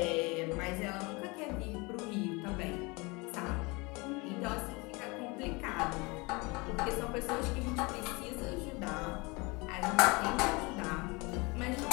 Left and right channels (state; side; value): quieter; right; 26.4 dB